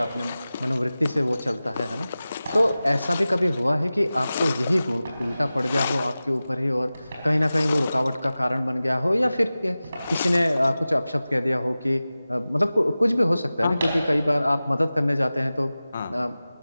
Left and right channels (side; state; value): both; inverted; correlation -0.96